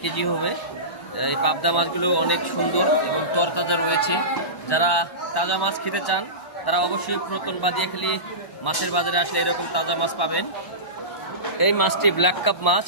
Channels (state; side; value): late; right; 1.0 ms